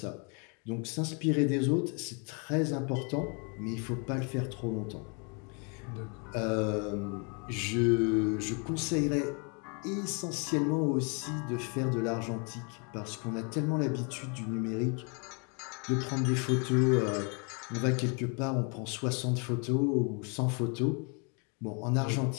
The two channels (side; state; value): right; quieter; 35.9 dB